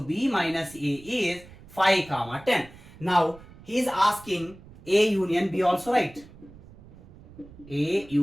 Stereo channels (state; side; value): noise; right; rumble, 21 dB below the sound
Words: minus A is 5, 10. Now he is asking A union B also, right? A